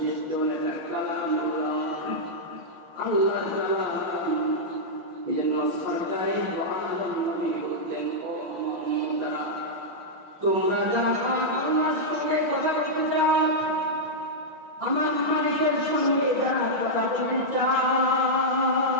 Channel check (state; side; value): late; left; 5.9 ms